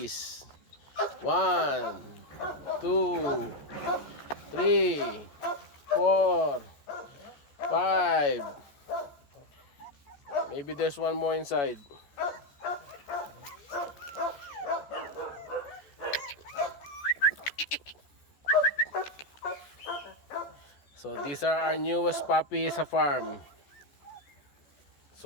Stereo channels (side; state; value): right; late; 14 ms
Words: 1, 2, 3, 4, 5. Maybe there's one more inside. So these are our newest puppies sa farm.